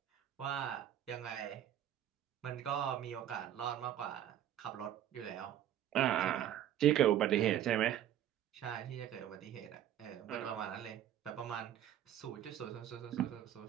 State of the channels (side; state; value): left; quieter; 11.1 dB